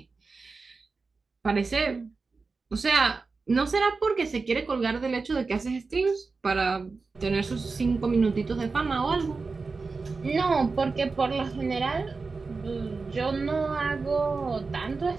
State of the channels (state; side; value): quieter; left; 4.2 dB